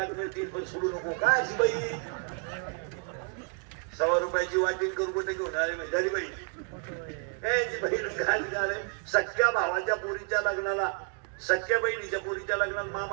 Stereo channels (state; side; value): quieter; left; 38.7 dB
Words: मिळतील पण सोडू नको काय अशी बाई 100 रुपयाची वाटीन करू कुठे घेऊन आले म्हणजे बाई सख्या भावाच्या पोरीच्या लग्नाला सख्या बहिणीच्या पोरीच्या लग्नाला